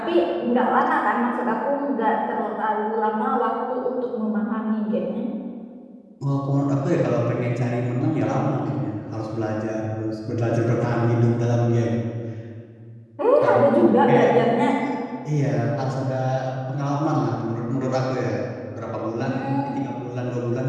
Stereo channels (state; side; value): identical; both; correlation 1.00